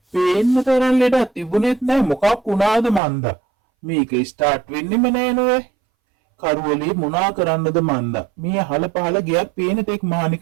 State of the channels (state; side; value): drops out; left; at 3.0 s